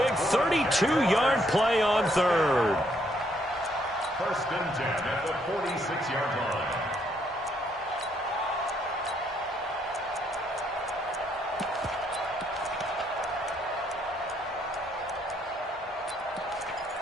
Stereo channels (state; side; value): normal; both; correlation 0.71